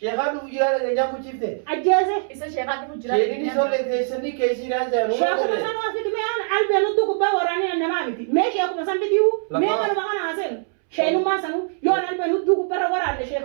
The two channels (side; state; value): left; silent; 64 dB below the other